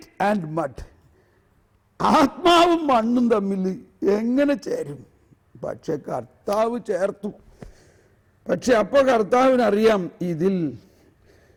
and mud, ആത്മാവും മണ്ണും തമ്മിൽ എങ്ങനെ ചേരും? പക്ഷെ കർത്താവ് ചേർത്തു. പക്ഷെ അപ്പോൾ കർത്താവിനറിയാം ഇതിൽ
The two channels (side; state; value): both; identical; correlation 1.00